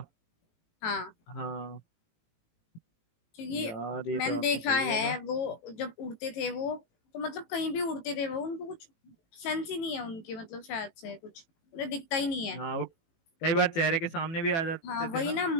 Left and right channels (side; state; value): right; late; 18 ms